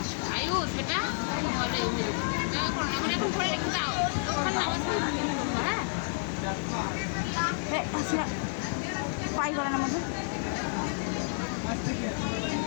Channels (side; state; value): right; silent; 58 dB below the other